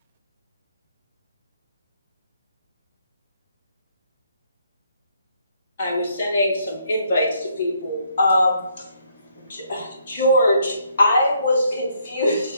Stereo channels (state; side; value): inverted; both; correlation -0.70